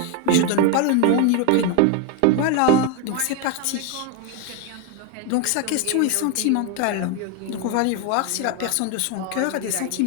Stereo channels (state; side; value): different; both; correlation 0.01